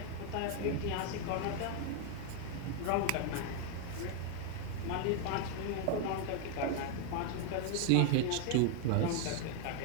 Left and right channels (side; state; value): both; different; correlation 0.01